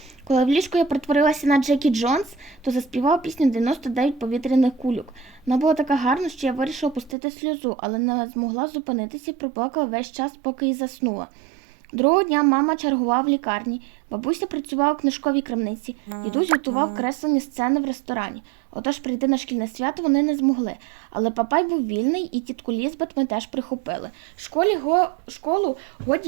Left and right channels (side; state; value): left; drops out; at 7.2 s